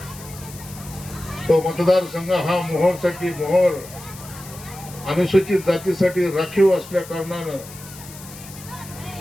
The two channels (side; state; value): left; noise; hiss, 16 dB below the sound